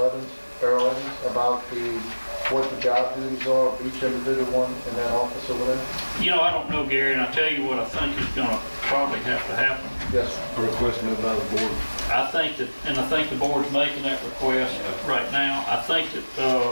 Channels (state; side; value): inverted; both; correlation -1.00